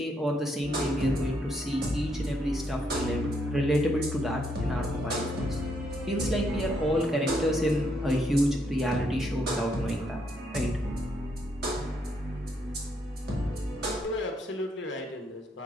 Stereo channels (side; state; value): both; normal; correlation 0.75